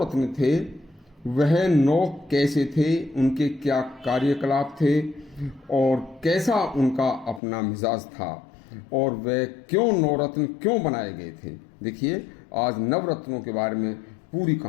थे वह 9 कैसे थे, उनके क्या कार्यकलाप थे और कैसा उनका अपना मिजाज था और वह क्यों 9 रत्न क्यों बनाए गए थे। देखिए, आज नवरत्नों के बारे में पूरी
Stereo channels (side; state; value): right; drops out; at 7.4 s